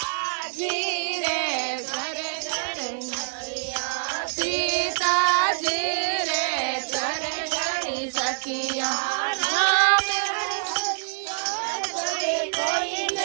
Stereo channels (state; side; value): silent; left; digital silence